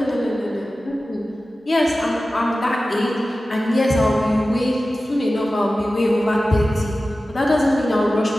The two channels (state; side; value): normal; both; correlation 0.95